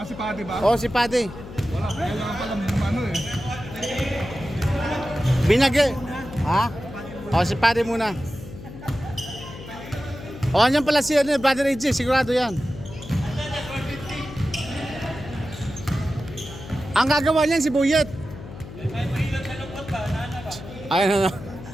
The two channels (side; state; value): left; noise; hum, 13 dB below the sound